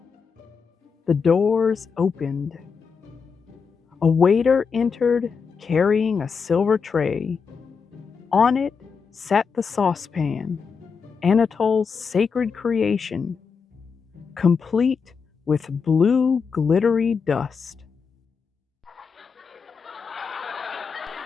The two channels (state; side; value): quieter; right; 5.7 dB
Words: The doors opened. A waiter entered carrying a silver tray. On it sat the saucepan, Anatole's sacred creation, complete with blue glittery dust.